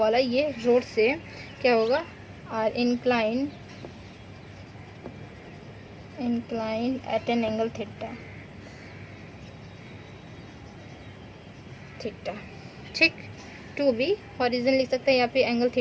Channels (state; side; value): identical; both; correlation 1.00